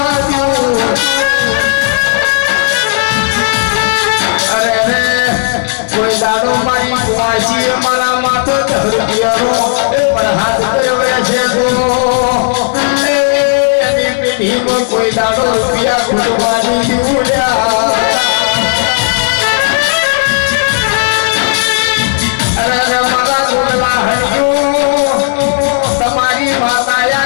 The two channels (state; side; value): silent; right; digital silence